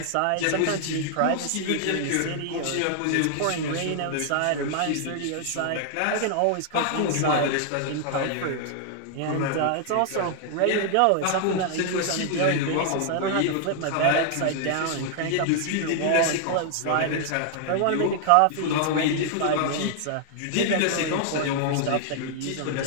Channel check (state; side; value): different; both; correlation 0.00